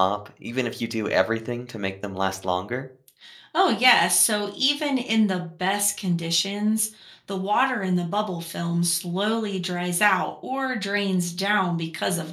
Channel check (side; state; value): both; identical; correlation 1.00